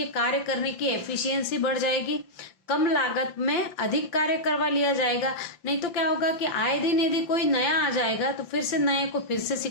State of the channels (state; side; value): late; right; 5.8 ms